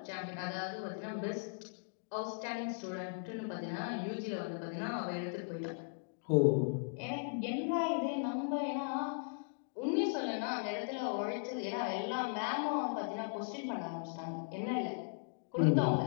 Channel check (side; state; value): right; silent; digital silence